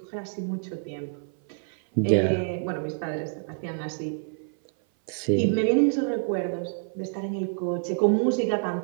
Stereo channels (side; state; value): left; silent; 57 dB below the other